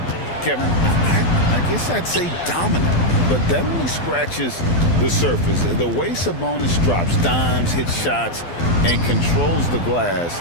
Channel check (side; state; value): right; late; 12 ms